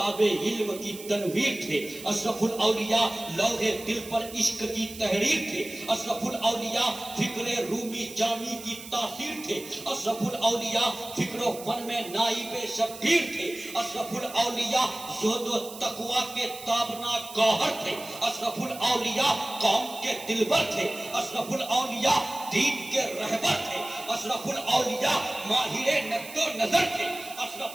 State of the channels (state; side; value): noise; right; hiss, 14 dB below the sound